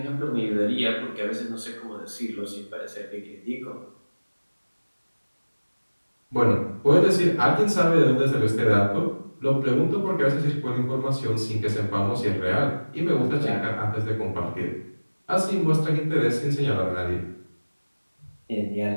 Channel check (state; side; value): inverted; both; correlation -1.00